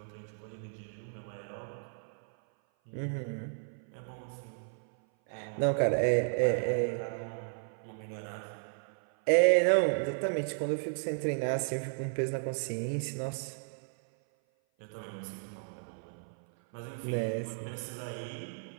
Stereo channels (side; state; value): left; silent; 55 dB below the other